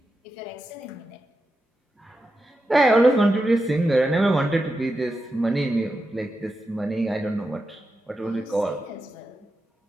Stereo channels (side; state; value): both; normal; correlation 0.89